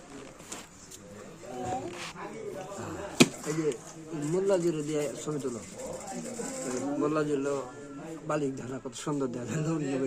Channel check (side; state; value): both; identical; correlation 1.00